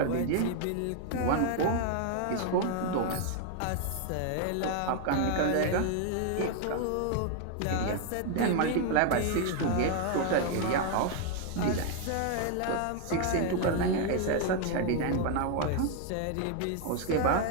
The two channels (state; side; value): different; both; correlation 0.00